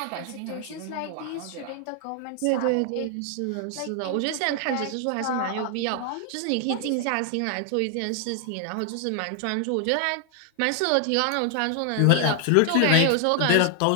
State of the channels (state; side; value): different; both; correlation 0.00